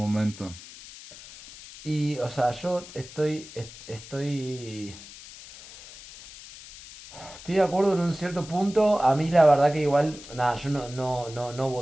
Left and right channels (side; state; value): left; noise; hiss, 17 dB below the sound